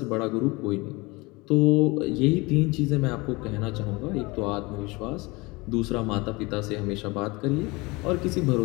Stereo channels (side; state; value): right; quieter; 24.5 dB